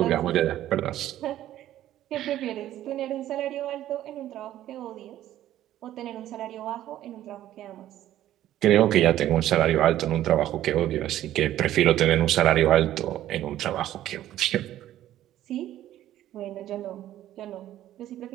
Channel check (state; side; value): quieter; left; 13.0 dB